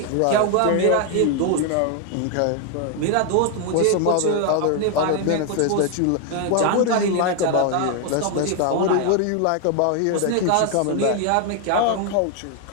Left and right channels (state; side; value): different; both; correlation 0.01